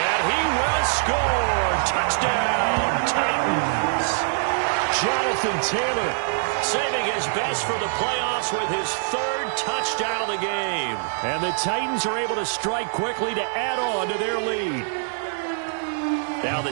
he will score. Touchdown, Titans. Jonathan Taylor saving his best for the playoffs with his 3rd touchdown of the game. And the Titans are able to strike quickly to add on to their lead. Now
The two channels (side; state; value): left; silent; digital silence